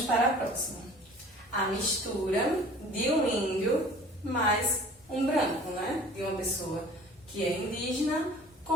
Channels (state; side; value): normal; both; correlation 0.46